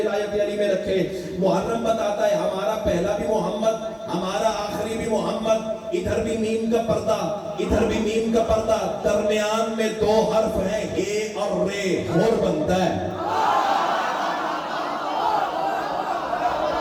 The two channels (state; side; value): identical; both; correlation 1.00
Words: علی میں رکھے. محرم بتاتا ہے ہمارا پہلا بھی محمد, ہمارا آخری بھی محمد. ادھر بھی میم کا پردہ, ادھر بھی میم کا پردہ, درمیان میں 2 حرف ہیں اے اور رے, ہور بنتا ہے.